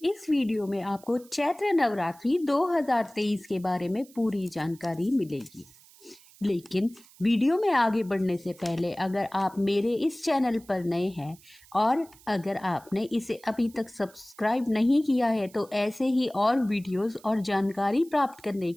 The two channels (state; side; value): noise; right; hiss, 25 dB below the sound